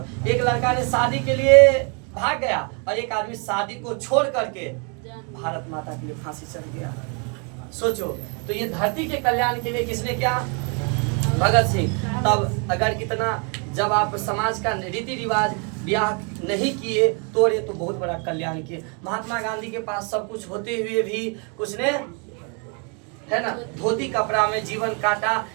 एक लड़का ने शादी के लिए भाग गया और एक आदमी शादी को छोड़ करके भारत माता के लिए फांसी चढ़ गया। सोचो, तो ये धरती के कल्याण के लिए किसने क्या? भगत सिंह। तब अगर इतना जब आप समाज का रीति रिवाज ब्याह नहीं किए, तोड़े, तो बहुत बड़ा कल्याण किए। महात्मा गांधी के पास सब कुछ होते हुए भी कुछ ने, है ना, धोती कपड़ा में जीवन काटा।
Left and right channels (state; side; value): quieter; left; 36.6 dB